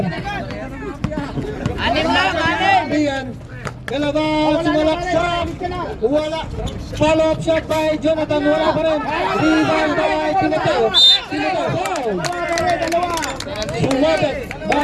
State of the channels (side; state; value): both; identical; correlation 1.00